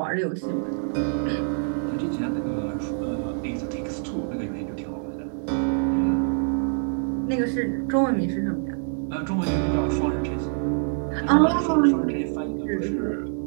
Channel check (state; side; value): silent; left; digital silence